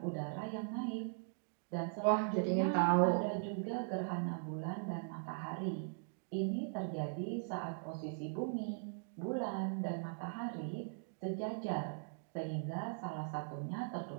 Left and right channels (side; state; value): left; silent; digital silence